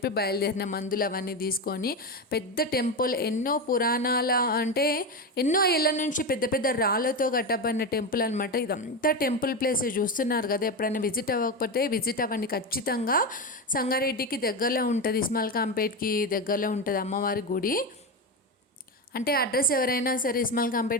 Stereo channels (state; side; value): normal; both; correlation 0.16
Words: బయలుదేరిన, మందులు అవన్నీ తీసుకొని. పెద్ద టెంపుల్, ఎన్నో పురాణాల అంటే ఎన్నో ఏళ్ళ నుంచి పెద్ద పెద్ద రాళ్ళతో కట్టబడిన టెంపుల్ అనమాట. ఇదంతా టెంపుల్ ప్లేస్ చూస్తున్నారు కదా. ఎప్పుడైనా విజిట్ అవ్వకపోతే విజిట్ అవ్వండి ఖచ్చితంగా. సంగారెడ్డికి దగ్గరలో ఉంటుంది, ఇస్మాల్ కాంపేట్కి దగ్గరలో ఉంటుంది అమ్మవారి గుడి. అంటే అడ్రస్ ఎవరైనా సరే ఇస్మాల్